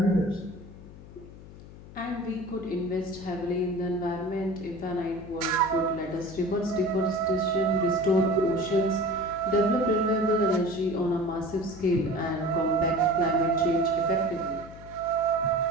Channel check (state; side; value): noise; left; hum, 17 dB below the sound